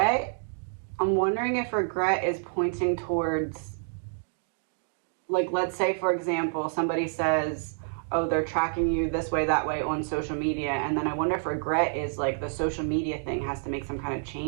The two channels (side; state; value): left; silent; digital silence